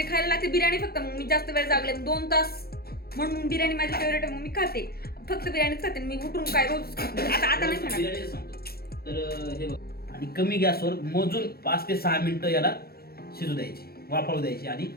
खायला लागते बिर्याणी फक्त. मग मी जास्त वेळ जागले 2 तास म्हणून बिर्याणी माझी फेवरेट आहे. मग मी खाते फक्त बिर्याणीच खाते. मी उठून काय रोज आता नाही खाणार. बिर्याणी सांगतो. तर हे बघ आणि कमी गॅसवर मोजून 5 ते 6 मिनिटं याला शिजू द्यायची. वाफळू द्यायची आणि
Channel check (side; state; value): right; late; 0.45 ms